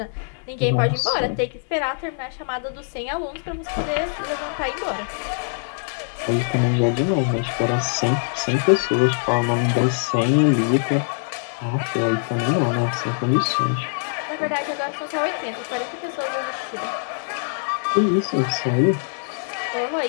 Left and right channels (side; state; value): right; silent; 63 dB below the other